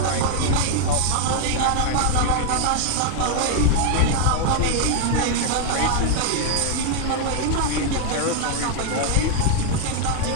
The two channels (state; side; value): different; both; correlation 0.00